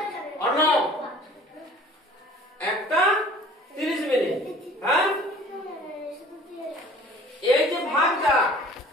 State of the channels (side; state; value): both; normal; correlation 0.49